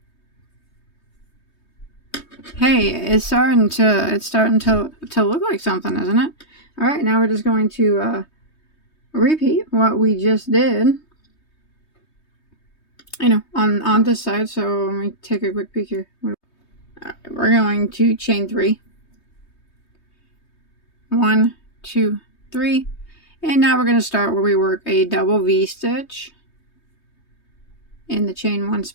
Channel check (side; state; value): right; late; 3.2 ms